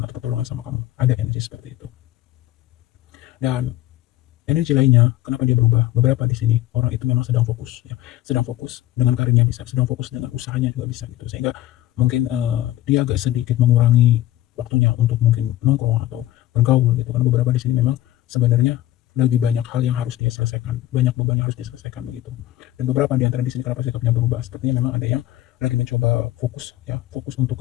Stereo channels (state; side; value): quieter; right; 14.8 dB